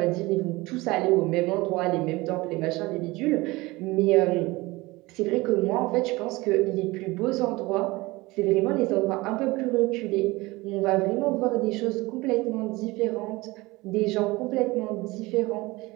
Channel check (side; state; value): left; quieter; 21.6 dB